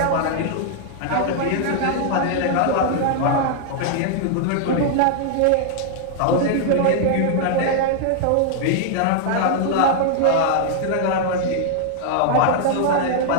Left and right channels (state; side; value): different; both; correlation -0.01